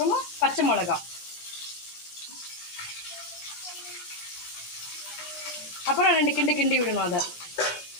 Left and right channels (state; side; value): late; right; 18 ms